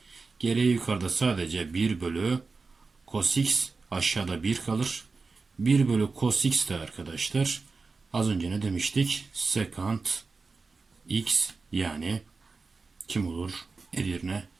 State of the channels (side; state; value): left; quieter; 4.2 dB